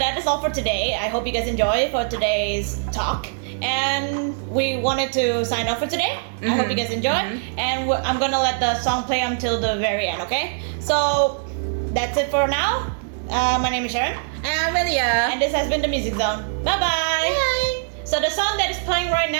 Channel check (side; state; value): left; silent; digital silence